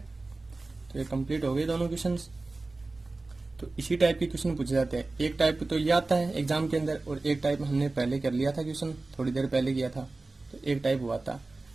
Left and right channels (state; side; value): quieter; left; 3.3 dB